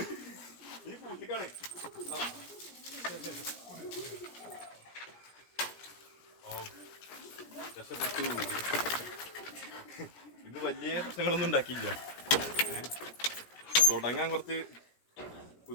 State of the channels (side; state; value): right; late; 17 ms